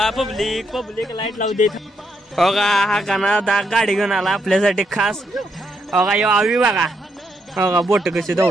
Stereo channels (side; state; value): both; normal; correlation 0.78